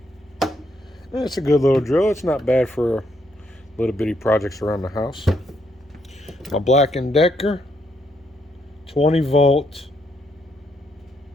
It's a good little drill. It's not bad for little bitty projects around the house. My Black & Decker 20 volt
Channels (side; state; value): both; normal; correlation 0.75